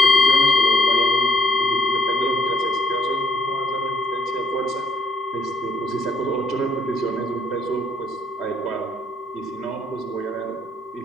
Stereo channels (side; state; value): both; normal; correlation 0.69